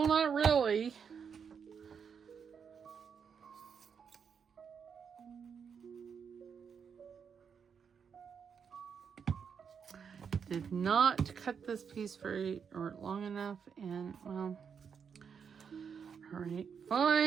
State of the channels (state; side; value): quieter; left; 6.7 dB